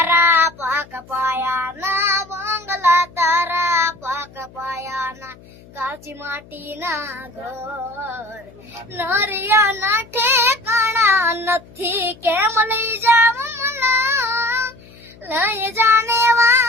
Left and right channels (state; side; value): noise; left; hum, 23 dB below the sound